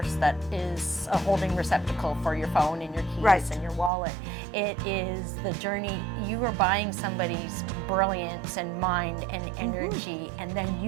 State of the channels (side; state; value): left; drops out; at 3.9 s